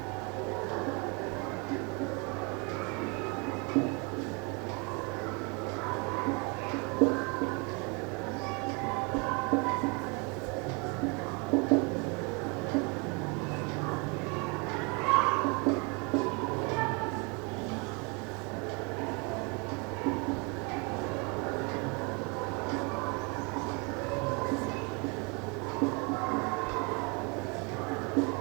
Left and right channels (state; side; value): quieter; left; 31.6 dB